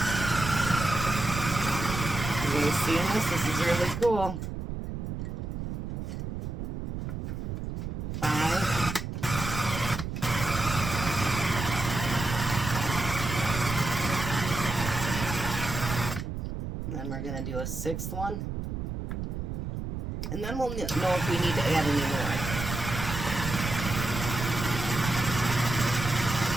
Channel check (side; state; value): right; noise; rumble, 5 dB below the sound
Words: You seeing this? This is really cool. 5. And then we're going to do a 6th one. And then we'll know if we need to add any more.